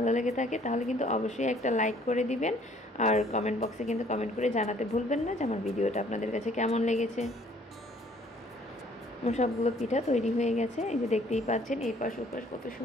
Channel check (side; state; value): both; normal; correlation 0.59